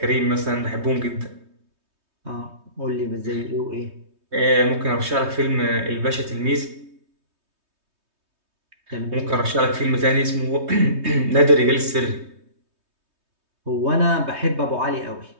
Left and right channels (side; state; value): left; late; 3.2 ms